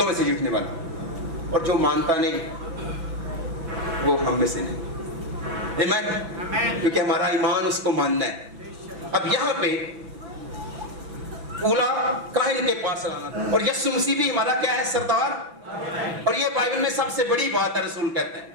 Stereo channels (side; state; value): left; late; 6.0 ms